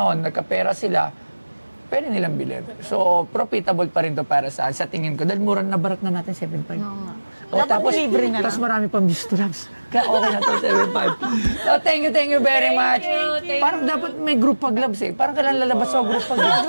nagkapera sila, pwede nilang bilhin. So, profitable pa rin to para sa tingin ko. Dahil mura na barat na natin, 7.5. O, tapos marami pang Bisturabs. Kaya okay na to, 7.5. So, thank you very much. Thank Parang dapat may group pag gloves eh. Parang kailan lalabas ako group pag eh.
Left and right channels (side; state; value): both; inverted; correlation -1.00